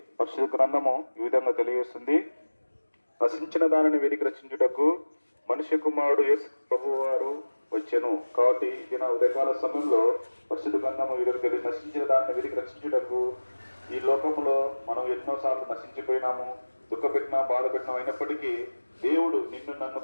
పరిశుద్ధ గ్రంథము ఈ విధంగా తెలియజేస్తుంది, నశించిన దానిని వెతికి రక్షించుటకు మనుష్య కుమారుడు యేసు ప్రభు వారు వచ్చెను. కాబట్టి ఇది నా ఉదయకాల సమయంలో పరిశుద్ధ గ్రంథము వీరికి నశించిన దానిని వెతికి రక్షించుటకు, ఈ లోకంలో మనం ఎన్నోసార్లు నశించిపోయినాము, దుఃఖపెట్టినా బాధ పెట్టినా, అయినప్పటికీ దేవుడు నిన్ను నన్ను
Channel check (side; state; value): both; inverted; correlation -1.00